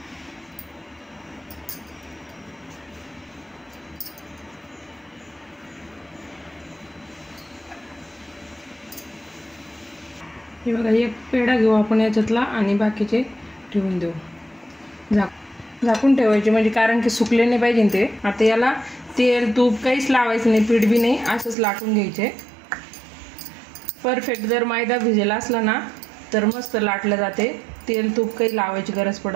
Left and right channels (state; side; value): drops out; left; at 21.6 s